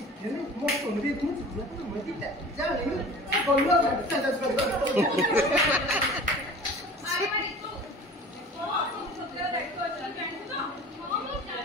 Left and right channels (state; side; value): normal; both; correlation 0.41